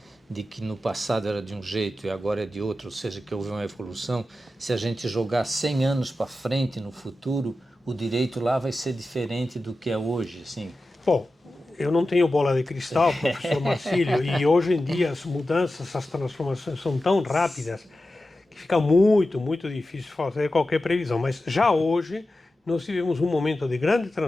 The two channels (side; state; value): both; normal; correlation 0.93